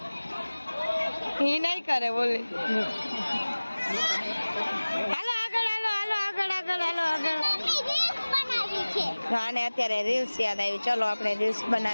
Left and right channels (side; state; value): both; inverted; correlation -1.00